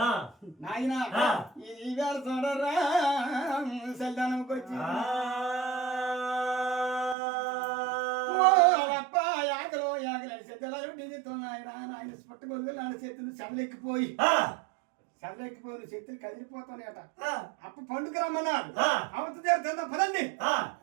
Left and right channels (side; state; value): left; drops out; at 7.2 s